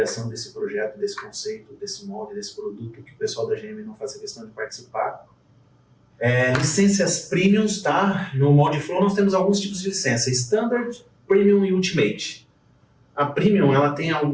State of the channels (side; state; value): both; identical; correlation 1.00